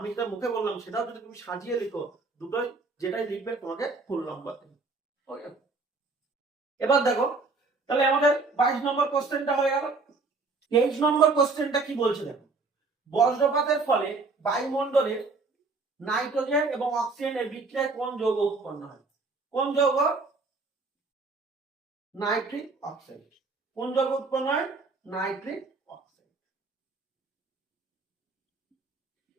যেটা মুখে বললাম সেটাও যদি তুমি সাজিয়ে লিখো, দুটোই যেটাই লিখবে তোমাকে ফুল নাম্বার দেবে। ওকে, এবার দেখো, তাহলে আমাদের 22 নম্বর কোশ্চেনটা হয়ে গেল। 23 নম্বর কোশ্চেনটা কি বলছে দেখো, বজ্রপাতের ফলে বায়ুমণ্ডলের নাইট্রোজেন এবং অক্সিজেনের বিক্রিয়ায় কোন যৌগ উৎপন্ন হয়? কোন যৌগ? Nitric oxide. কোন যৌগ উৎপন্ন হয়? Nitric oxide.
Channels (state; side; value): quieter; left; 3.9 dB